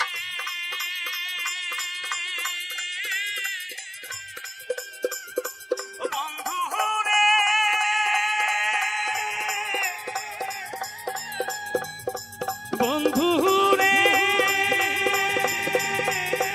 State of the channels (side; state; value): both; identical; correlation 1.00